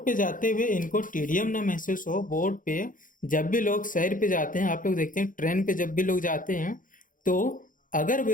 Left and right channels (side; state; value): right; late; 0.39 ms